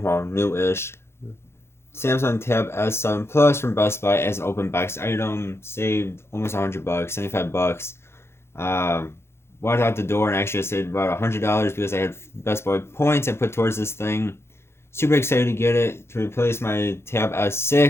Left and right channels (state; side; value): late; right; 0.12 ms